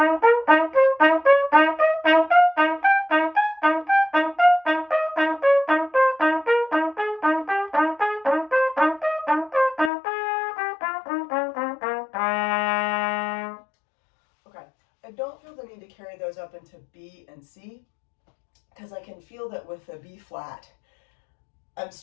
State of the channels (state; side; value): drops out; right; at 9.9 s